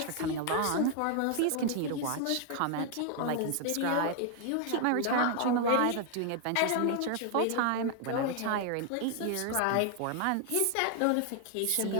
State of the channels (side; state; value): both; different; correlation 0.00